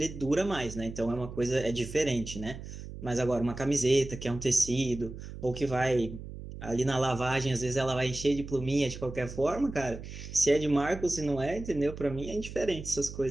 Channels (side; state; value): right; noise; hum, 11 dB below the sound